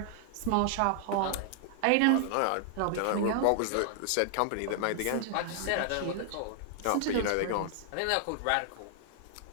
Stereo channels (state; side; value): different; both; correlation 0.00